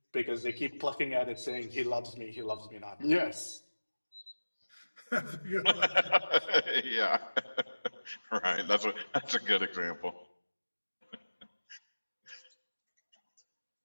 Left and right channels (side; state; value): both; inverted; correlation -1.00